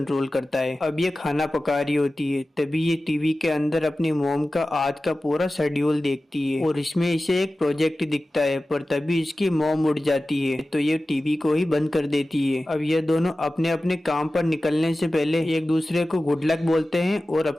करता है। अब ये खाना पका रही होती है, तभी ये टीवी के अंदर अपनी मोम का आज का पूरा शेड्यूल देखती है और इसमें इसे एक प्रोजेक्ट दिखता है, पर तभी इसकी मोम उड़ जाती है तो ये टीवी को ही बंद कर देती है। अब ये दोनों अपने अपने काम पर निकलने से पहले एक दूसरे को गुड लक बोलते हैं और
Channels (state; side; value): normal; both; correlation 0.95